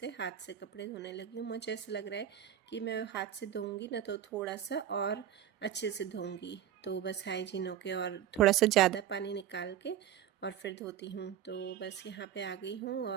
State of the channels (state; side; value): quieter; left; 10.4 dB